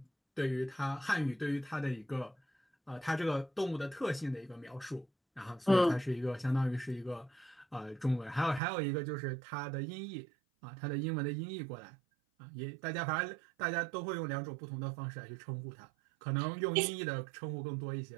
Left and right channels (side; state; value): left; drops out; at 8.6 s